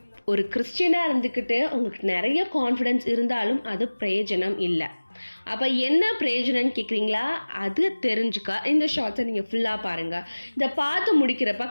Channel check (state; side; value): inverted; both; correlation -1.00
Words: ஒரு கிறிஸ்டியனாக இருந்துக்கிட்டு உங்களுக்கு நிறைய கான்ஃபிடென்ஸ் இருந்தாலும் அது பிரயோஜனம் இல்லை. அப்போ என்ன பிரயோஜனம்னு கேட்குறீங்களா? அது தெரிஞ்சுக்க இந்த ஷார்ட்ஸை நீங்கள் ஃபுல்லாக பாருங்கள். இதை பார்த்து முடிக்கிறப்ப